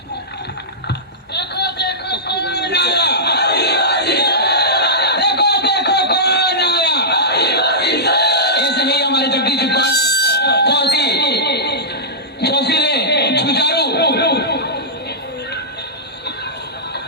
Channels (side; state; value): both; normal; correlation -0.15